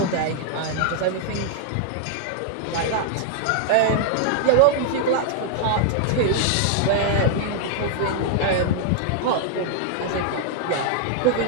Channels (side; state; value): both; different; correlation -0.01